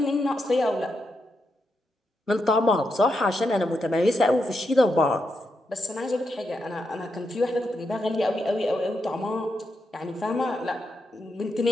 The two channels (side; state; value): both; normal; correlation 0.84